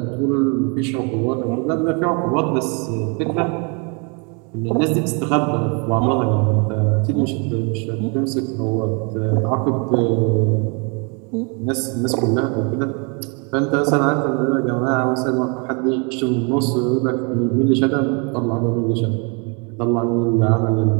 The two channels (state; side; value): quieter; left; 34.1 dB